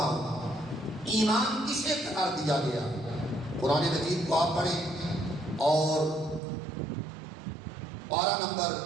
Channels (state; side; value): drops out; left; at 6.4 s